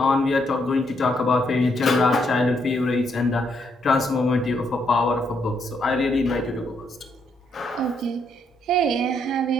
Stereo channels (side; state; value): both; normal; correlation 0.75